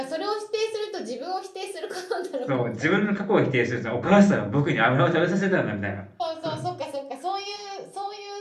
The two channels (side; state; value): both; identical; correlation 1.00